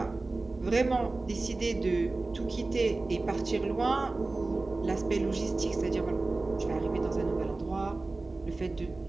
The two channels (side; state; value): left; quieter; 3.3 dB